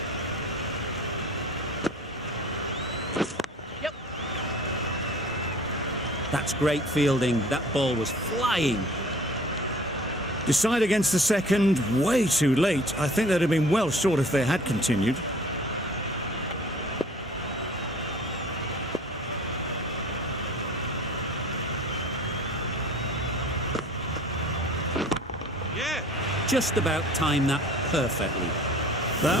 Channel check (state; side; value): normal; both; correlation 0.47